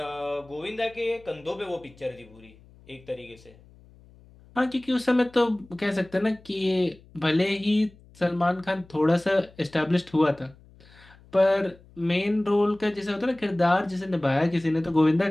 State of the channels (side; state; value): left; noise; hum, 25 dB below the sound